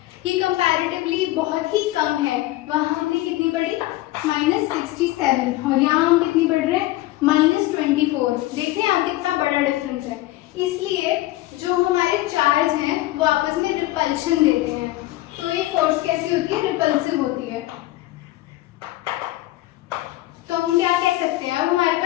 ये कंपैरेटिवली बहुत ही कम है। वहां हमने कितनी पढ़ी, -67, और यहाँ हम कितनी पढ़ रहे हैं, -24। देख रहे हैं आप कितना बड़ा डिफरेंस है। इसलिए जो हमारे चार्ज हैं वो आपस में रिपल्शन देते हैं, तो ये फोर्स कैसी होती है, रिपल्सिव होती है। तो हम क्या कह सकते हैं, अब हमारे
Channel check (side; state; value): right; quieter; 17.0 dB